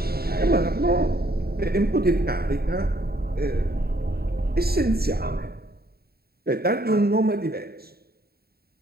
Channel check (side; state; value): left; late; 0.45 ms